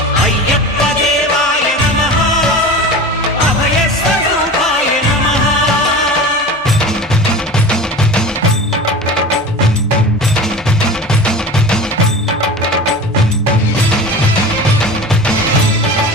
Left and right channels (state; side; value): normal; both; correlation 0.34